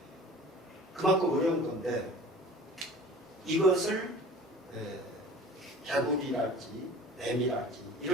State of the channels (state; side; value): normal; both; correlation 0.43